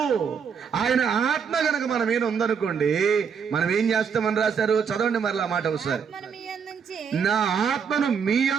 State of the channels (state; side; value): quieter; left; 6.6 dB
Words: ఆయన ఆత్మ గనక మన మీద ఉందనుకోండి, మనం ఏం చేస్తామని రాశారు? చదవండి మరలా మాట ఒకసారి. నా ఆత్మను మీ